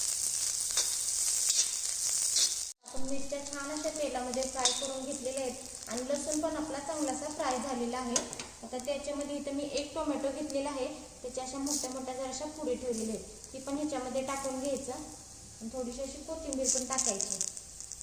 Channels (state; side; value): identical; both; correlation 1.00